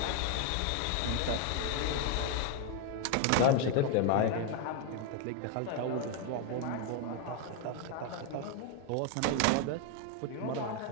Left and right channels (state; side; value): different; both; correlation 0.01